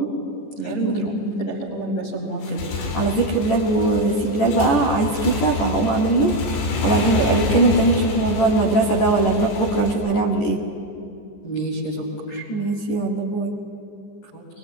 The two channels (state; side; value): late; right; 14 ms